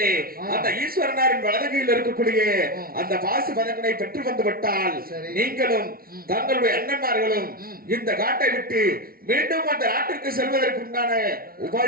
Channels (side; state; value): left; late; 0.43 ms